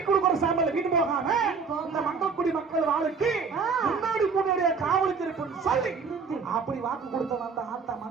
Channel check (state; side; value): quieter; left; 5.2 dB